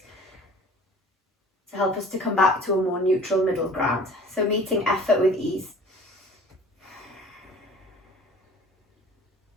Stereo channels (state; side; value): normal; both; correlation 0.46